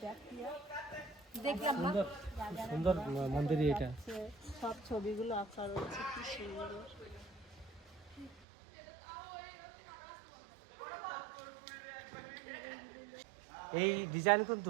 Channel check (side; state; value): left; drops out; at 8.5 s